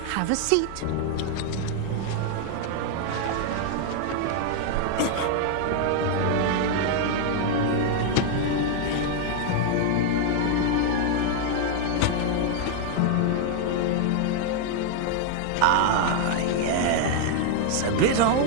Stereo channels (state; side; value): different; both; correlation 0.00